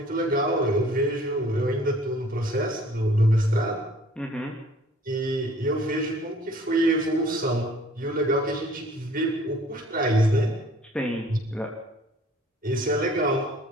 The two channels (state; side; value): normal; both; correlation 0.53